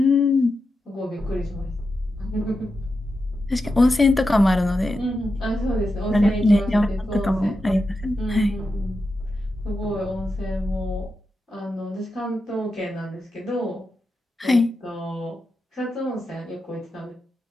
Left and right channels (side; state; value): both; normal; correlation 0.89